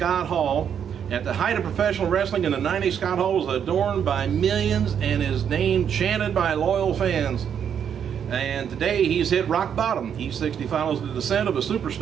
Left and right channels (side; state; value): left; quieter; 8.3 dB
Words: Hall, at the height of professional wrestling in the 90s, Scott Hall was adorned by millions and his name chanted by loyal fans. And today he's hit rock bottom. E60 follows the descent of a